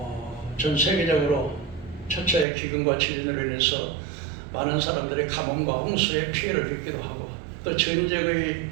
전 세계적으로 첫째 기근과 지진으로 인해서 많은 사람들이 가뭄과 홍수의 피해를 입기도 하고 또 전쟁의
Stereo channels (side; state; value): left; drops out; at 2.5 s